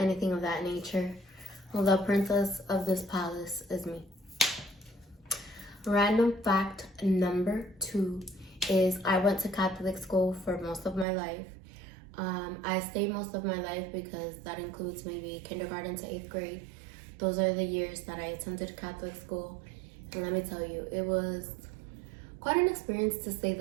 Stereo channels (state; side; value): drops out; left; at 11.1 s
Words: of that nature. Well, the princess of this palace is me. Random fact number 2 is, I went to Catholic school for most of my life. I say most of my life because that includes maybe kindergarten to 8th grade. Those are the years that I attended Catholic school. And let me tell you, it was quite an experience to say